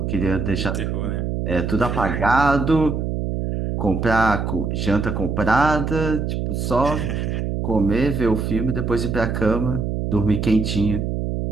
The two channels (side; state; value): right; noise; hum, 2 dB below the sound